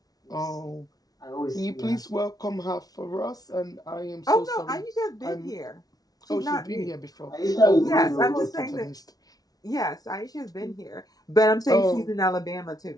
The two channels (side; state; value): right; late; 0.18 ms